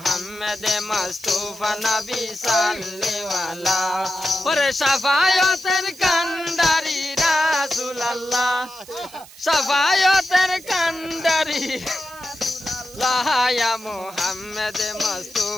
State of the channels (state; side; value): noise; right; hiss, 20 dB below the sound